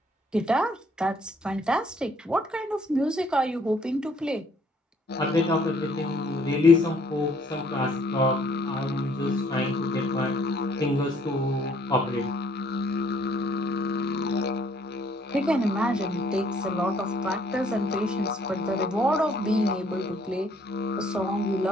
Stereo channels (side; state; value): both; normal; correlation 0.63